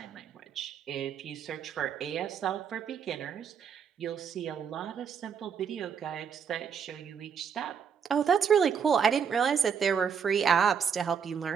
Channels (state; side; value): quieter; left; 7.0 dB